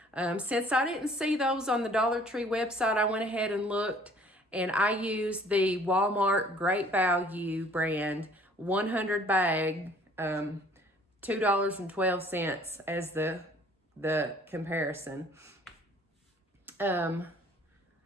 Since I didn't see those on the Dollar Tree website, I went ahead and looked, and I used the Walmart Great Value brand 100 bag, $2.12 as the comparison.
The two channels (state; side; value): normal; both; correlation 0.55